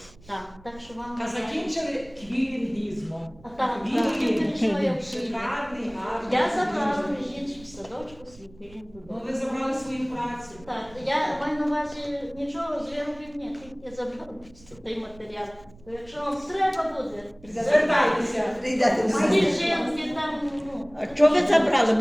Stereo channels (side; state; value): right; noise; rumble, 24 dB below the sound